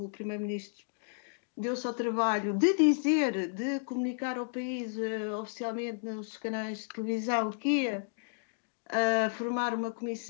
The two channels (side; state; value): right; silent; digital silence